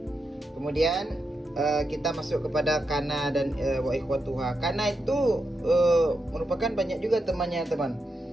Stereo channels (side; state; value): both; normal; correlation 0.85